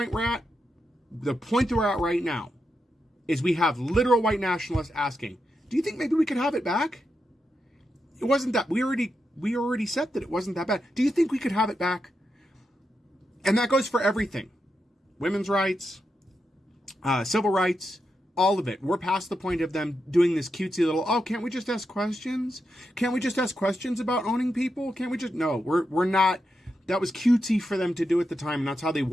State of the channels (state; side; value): normal; both; correlation 0.86